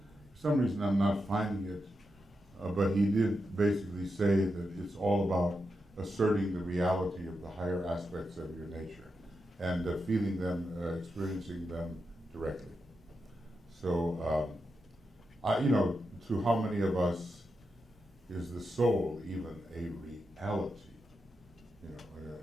some reason I'm not finding it, but he did basically say that it's all about asserting the reality of the higher aspects of your nature and feeling them, experiencing them directly. So, you know, to how many of us is the soul even a reality? You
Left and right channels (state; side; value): normal; both; correlation 0.87